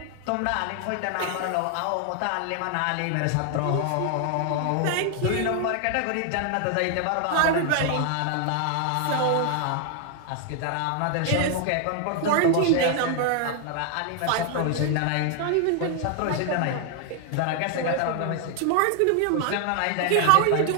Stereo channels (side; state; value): both; different; correlation 0.00